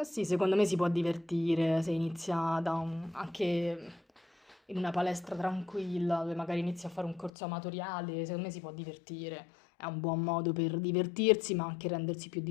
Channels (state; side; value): drops out; right; at 7.3 s